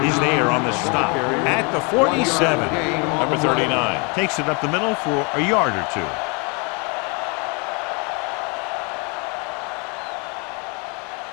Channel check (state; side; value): quieter; right; 32.8 dB